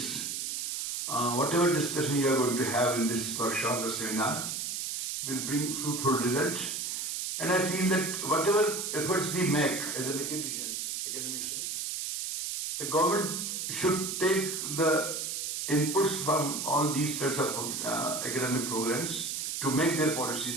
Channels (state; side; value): noise; right; hiss, 3 dB below the sound